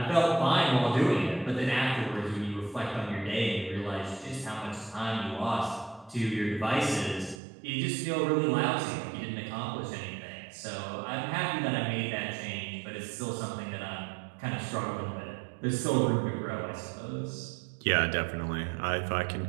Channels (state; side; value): drops out; left; at 7.4 s